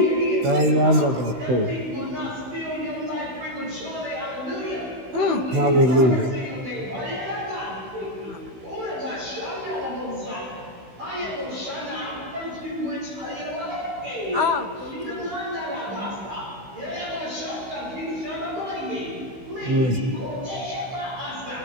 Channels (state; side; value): late; left; 16 ms